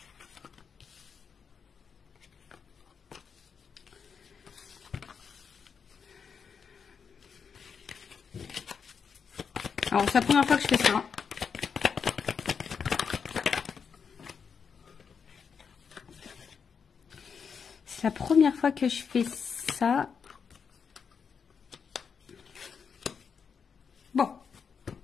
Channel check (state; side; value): quieter; right; 6.3 dB